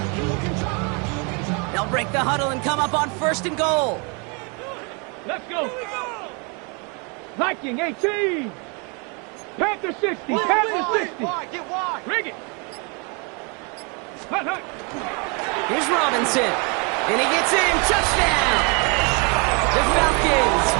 They'll break the huddle and come up on first and goal. Let's go. Viking 18. Panther 60. Panther 60. Get wide. Rig it. Hut, hut. Here's Robinson. And he gets in. Touchdown. The Falcons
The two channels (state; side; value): quieter; left; 33.2 dB